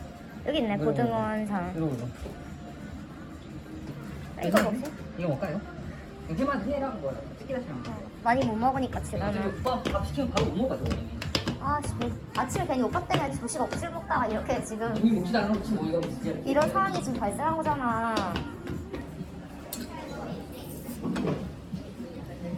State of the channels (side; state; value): both; identical; correlation 1.00